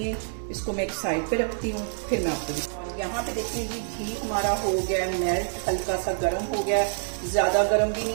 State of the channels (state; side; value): silent; left; digital silence